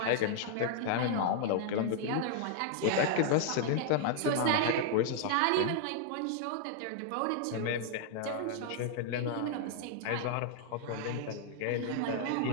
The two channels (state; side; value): different; both; correlation 0.00